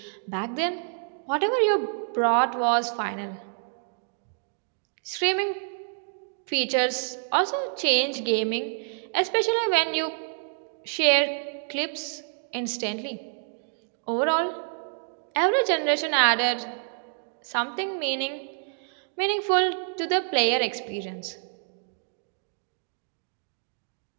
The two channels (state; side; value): silent; left; digital silence